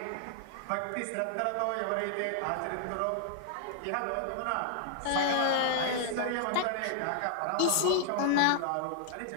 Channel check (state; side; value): different; both; correlation -0.01